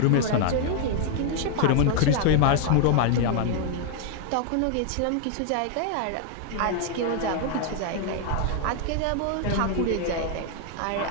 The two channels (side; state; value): both; different; correlation 0.00